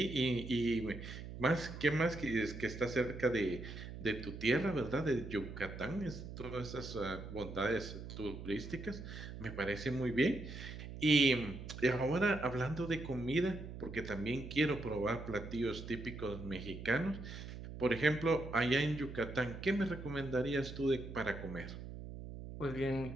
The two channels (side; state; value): right; noise; hum, 10 dB below the sound